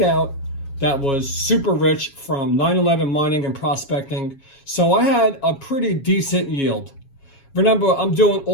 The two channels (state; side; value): late; right; 7.3 ms